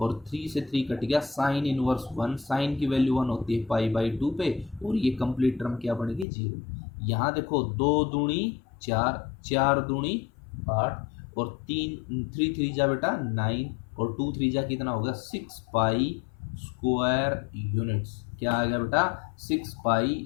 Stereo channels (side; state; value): right; drops out; at 6.2 s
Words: 3 से 3 कट गया साइन इनवर्स 1। साइन की वैल्यू 1 होती है π/2 पे और ये कंप्लीट टर्म क्या बनेगी 0। यहाँ देखो 2 दूनी 4, 4 दूनी 8 और 3 3 जा बेटा 9 और 2 3 जा कितना होगा 6 पाई स्क्वायर यूनिट्स। क्या आ गया बेटा 6 पाई